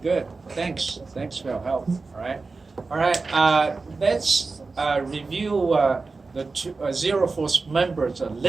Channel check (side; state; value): left; quieter; 4.0 dB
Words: Good. Thanks. Thanks for your help. All right. All right. Let's review the zero force members a